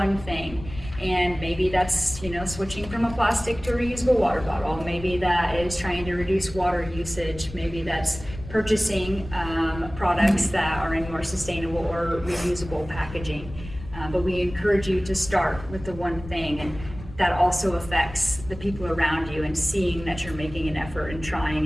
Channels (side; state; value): left; noise; rumble, 13 dB below the sound